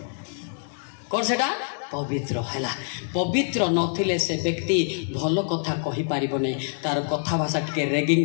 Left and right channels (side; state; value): right; silent; 57 dB below the other